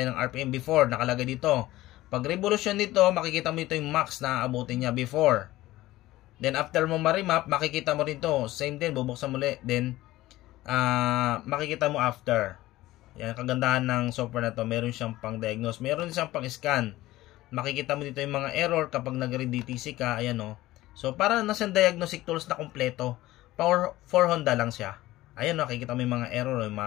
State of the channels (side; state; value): right; quieter; 16.9 dB